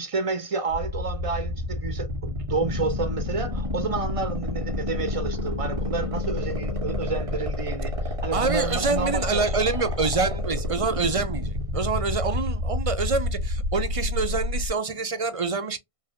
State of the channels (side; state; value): left; late; 1.5 ms